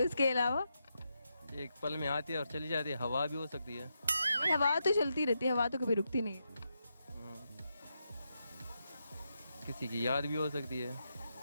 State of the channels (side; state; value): both; inverted; correlation -0.85